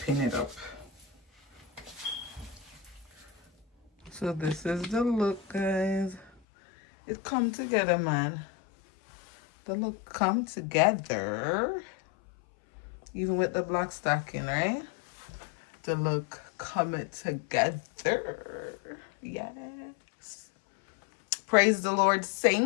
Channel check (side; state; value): right; drops out; at 6.3 s